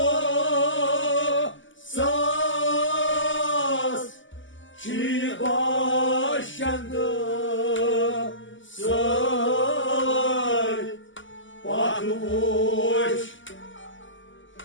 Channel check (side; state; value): right; late; 0.55 ms